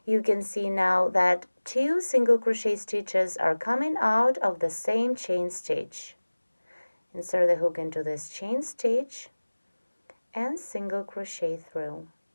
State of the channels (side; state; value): both; inverted; correlation -1.00